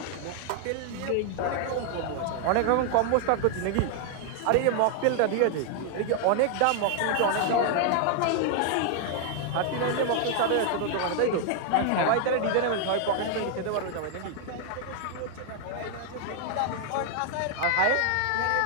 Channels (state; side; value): different; both; correlation 0.00